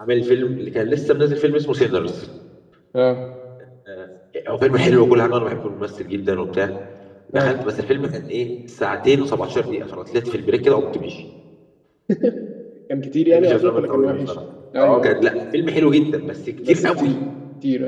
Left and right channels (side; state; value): both; identical; correlation 1.00